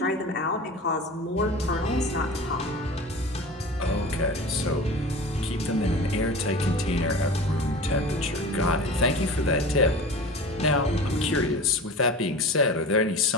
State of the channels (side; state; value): both; normal; correlation 0.35